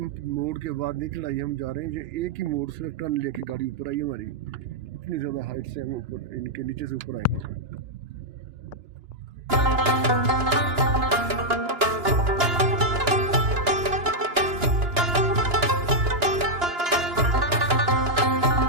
मोड़ के बाद नहीं चढ़ाई हम जा रहे हैं। ये एक ही मोड़ से टर्न लेके गाड़ी ऊपर आई हमारी। इतनी ज़्यादा हाइट से हम ऊपर, इनके नीचे से ऊपर आए।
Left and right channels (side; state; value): left; late; 2.9 ms